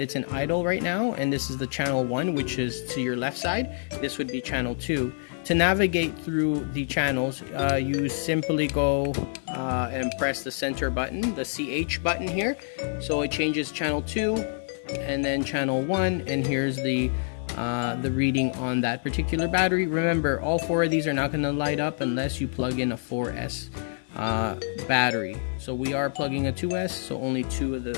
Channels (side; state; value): right; silent; 60 dB below the other